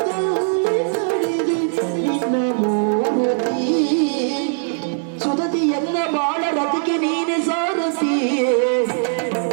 ಕಡಿದೆ ನಿನ್ನ ಮೂರುತಿ ಸುಧತಿ ಎಲ್ಲ ಬಾಳ ರಥಕ್ಕೆ ನೀನೆ ಸಾರಥಿ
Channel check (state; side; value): silent; left; digital silence